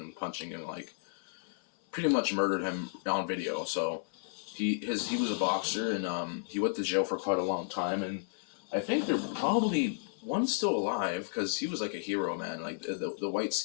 punching him, like, pretty much murdered him on video. So he was a boxer, and he went to jail for quite a long time, and I think they're probably one's still alive because he was like a hero, man. Like the white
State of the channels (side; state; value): right; silent; 56 dB below the other